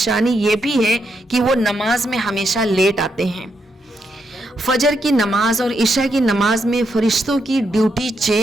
ये भी है कि वो नमाज में हमेशा लेट आते हैं। फजर की नमाज और इशा की नमाज में फरिश्तों की ड्यूटी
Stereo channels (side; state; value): both; normal; correlation 0.81